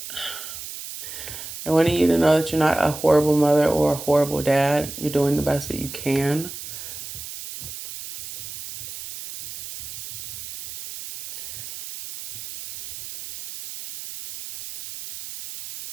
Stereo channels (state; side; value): noise; right; hiss, 10 dB below the sound